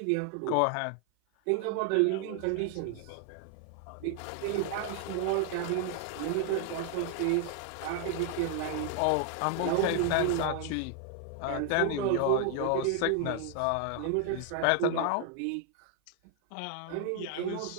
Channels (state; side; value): different; both; correlation 0.00